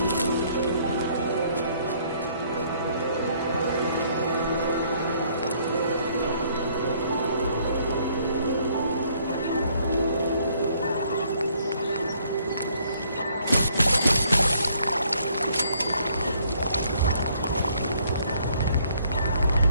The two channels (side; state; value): both; inverted; correlation -0.65